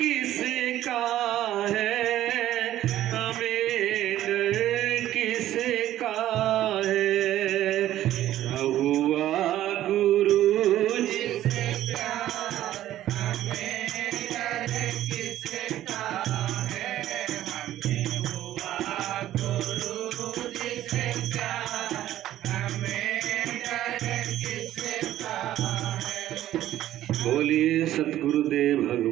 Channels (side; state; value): left; quieter; 13.2 dB